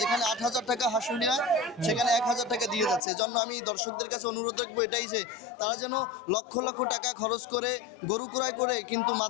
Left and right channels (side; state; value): right; drops out; at 3.0 s